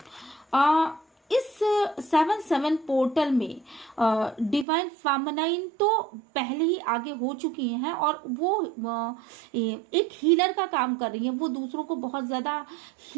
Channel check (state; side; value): drops out; left; at 4.7 s